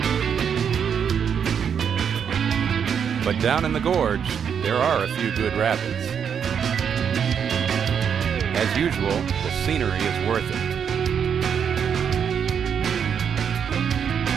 But down in the gorge, there are a few good rapids. As usual, the scenery is worth it.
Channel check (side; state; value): left; quieter; 7.6 dB